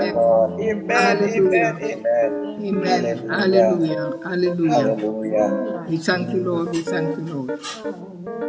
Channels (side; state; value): both; identical; correlation 1.00